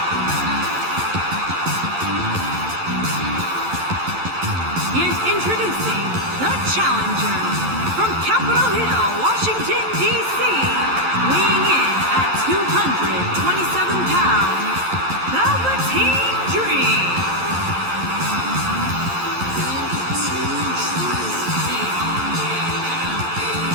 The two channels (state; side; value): late; left; 11 ms